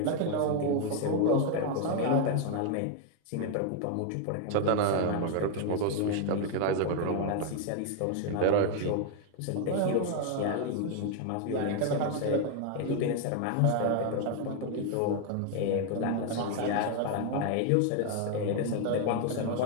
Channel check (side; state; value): both; different; correlation 0.00